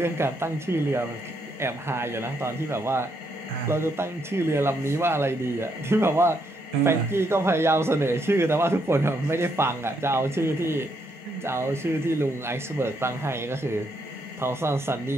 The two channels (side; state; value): both; normal; correlation 0.76